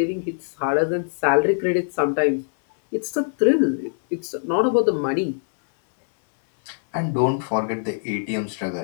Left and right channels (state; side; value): silent; right; digital silence